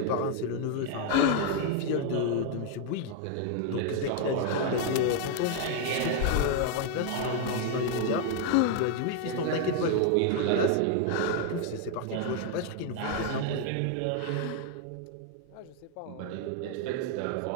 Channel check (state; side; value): different; both; correlation 0.00